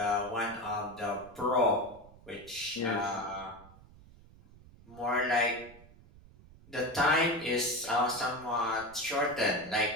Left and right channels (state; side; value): noise; right; rumble, 22 dB below the sound